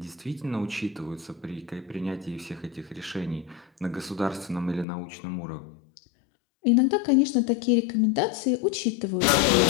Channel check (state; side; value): drops out; right; at 4.9 s